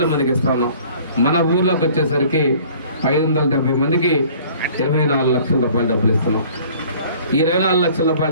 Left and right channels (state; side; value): inverted; both; correlation -0.52